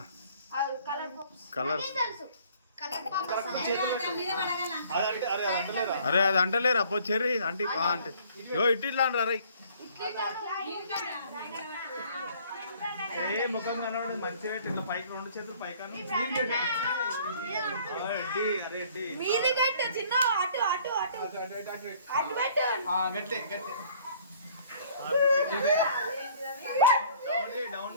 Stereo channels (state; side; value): inverted; both; correlation -0.55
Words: కలర్ అరే అది అంటలేరా పో చెర్రీ అంటే అంటే ఇట్లా అంటారా ఏ ముఖం కనబడి మంచిగా ఇట్లా పైకి 2 చేతులు పైకి